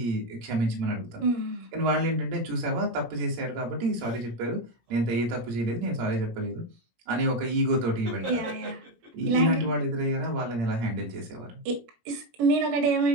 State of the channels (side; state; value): left; late; 17 ms